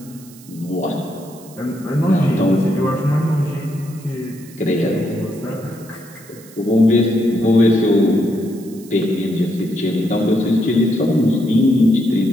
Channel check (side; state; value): right; noise; hiss, 22 dB below the sound